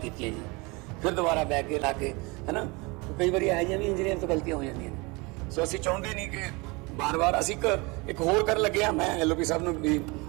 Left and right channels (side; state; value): left; quieter; 26.6 dB